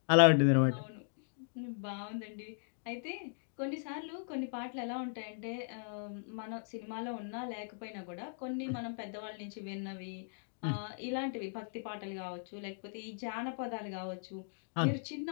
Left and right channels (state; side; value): silent; right; digital silence